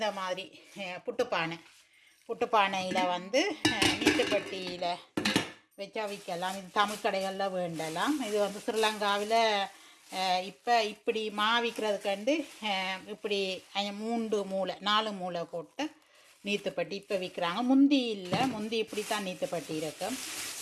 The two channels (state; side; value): identical; both; correlation 1.00